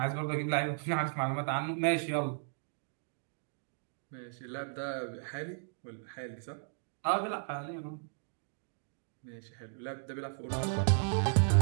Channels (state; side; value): silent; left; digital silence